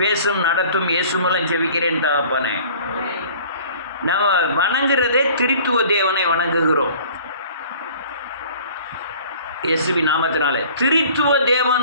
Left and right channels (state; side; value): inverted; both; correlation -0.49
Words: பேசும், நடத்தும். இயேசு மூலம் ஜெபிக்கிறேன் தகப்பனே. நம்ம வணங்குறதே திரித்துவ தேவனை வணங்குகிறோம். இயேசுவின் நாமத்தினாலே திரித்துவ